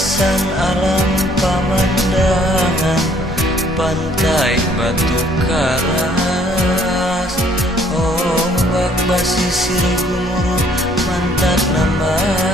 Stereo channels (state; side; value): normal; both; correlation 0.62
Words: alam pamandangan pantai batu karas, ombak basisir gumuruh mantak